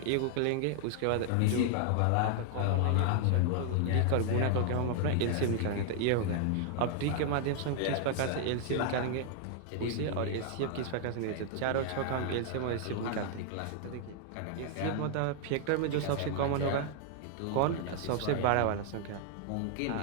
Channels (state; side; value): different; both; correlation 0.00